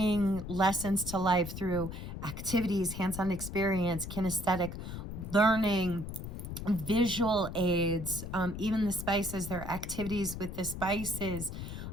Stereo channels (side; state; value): left; noise; rumble, 8 dB below the sound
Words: lessons to life through activities, hands-on experience, kinesthetic learning, visual aids, even the spices, there are activities with the spices.